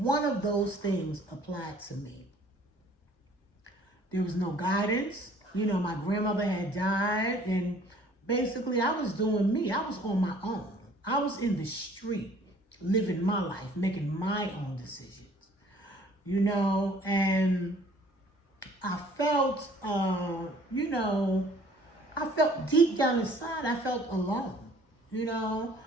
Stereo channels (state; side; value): late; right; 1.2 ms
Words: of those things applied to me. There was no guidance. You know, my grandmother had died, and basically I was doing me. I was on my own. I was in the street, living my life, making my own decisions. You know, and I felt, you know, I felt deep down inside, I felt alone. You know,